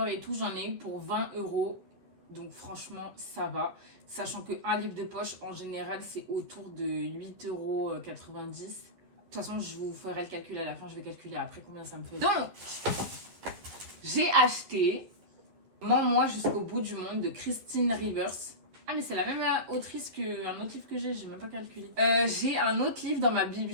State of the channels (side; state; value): left; late; 11 ms